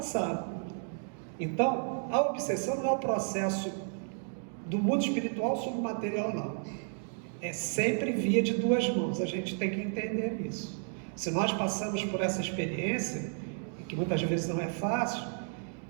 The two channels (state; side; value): silent; left; 56 dB below the other